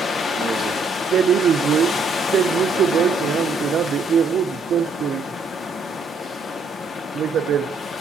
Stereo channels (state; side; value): quieter; left; 3.5 dB